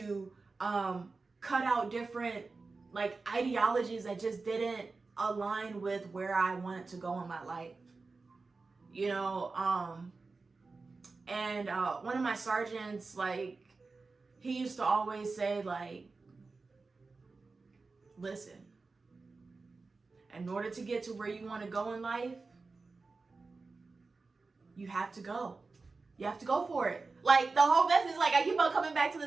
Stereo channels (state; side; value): quieter; left; 4.0 dB